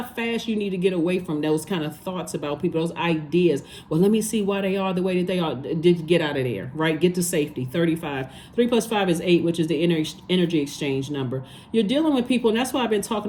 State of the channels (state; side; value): identical; both; correlation 1.00